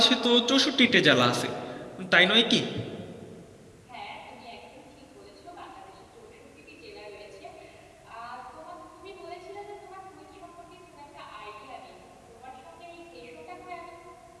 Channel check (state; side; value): identical; both; correlation 1.00